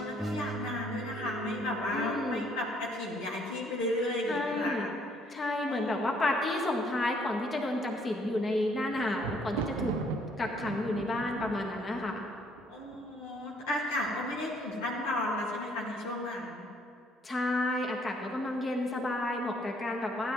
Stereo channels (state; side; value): normal; both; correlation 0.65